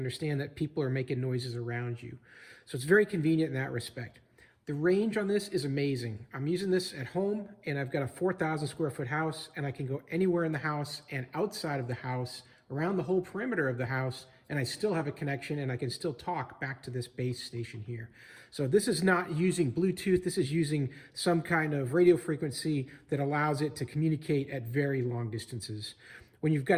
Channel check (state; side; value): identical; both; correlation 1.00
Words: that people are making noises around you. So it's very convenient in that respect. The range on this is amazing. I'm using this at home and I've got a 4,000 square foot house and I can go anywhere in the house and outside of the house, around the whole perimeter of the house, and I still have a connection and I can still talk back to this base station here. So this is not using Bluetooth, this is using some kind of radio frequency that allows it to communicate at very long distances. When you've